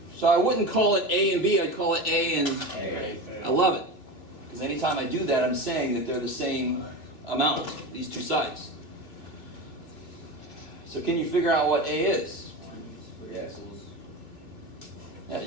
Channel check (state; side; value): late; right; 2.4 ms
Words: So I wouldn't call it A and B, I'd call it A and A. I love it. Because anytime I do that, I'm saying that they're the same amount, these two sides. So can you figure out what A is? Yeah,